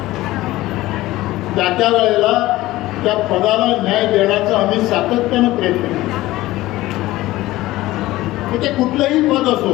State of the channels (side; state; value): right; quieter; 17.3 dB